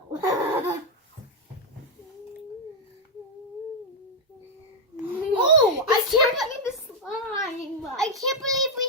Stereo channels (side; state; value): both; normal; correlation 0.00